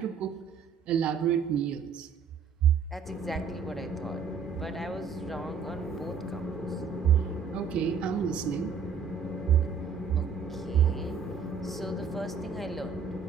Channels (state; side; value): quieter; left; 6.2 dB